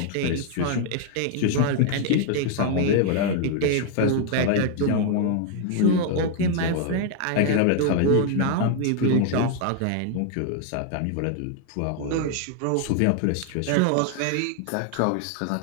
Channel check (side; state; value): both; different; correlation 0.00